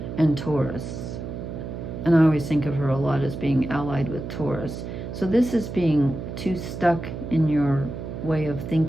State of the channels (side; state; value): right; noise; hum, 7 dB below the sound